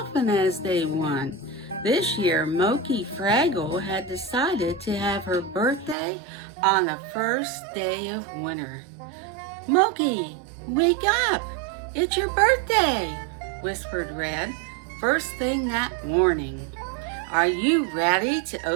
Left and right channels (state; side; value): drops out; left; at 6.0 s